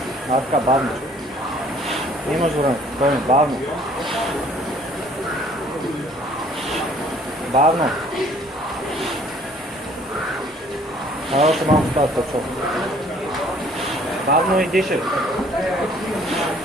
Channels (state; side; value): normal; both; correlation 0.57